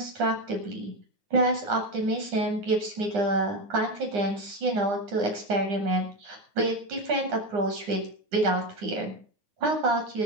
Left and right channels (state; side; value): late; left; 9.8 ms